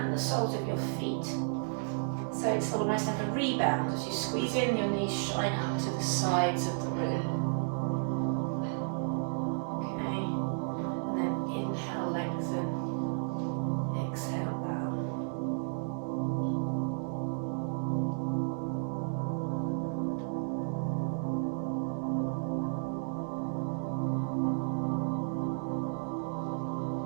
the soles of your feet. So it's almost like a rebound. As you squeeze in, your knees shine up to the sides of the room. Okay, and then inhale, lengthen. Exhale, bow.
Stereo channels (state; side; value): silent; left; 56 dB below the other